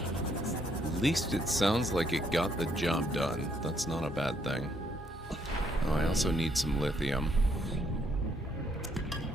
At least it sounds like it got the job done. That's not a bad thing. Oh, I also need some lithium.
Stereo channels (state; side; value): normal; both; correlation 0.71